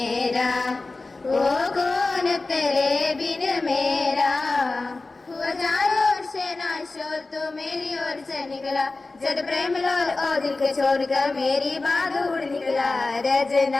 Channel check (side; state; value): right; quieter; 3.5 dB